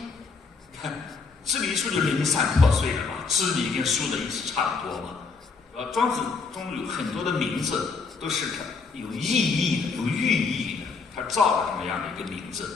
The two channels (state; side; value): quieter; right; 4.7 dB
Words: 看支离书就零散破碎了嘛，支离跟书的意思差不多嘛。庄子中有很多的名字都是有意义的、有寓意的，他造了这么样的一个名字。